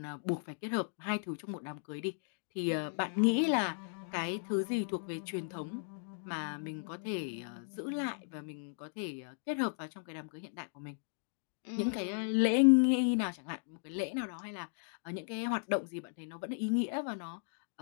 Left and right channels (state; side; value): silent; right; digital silence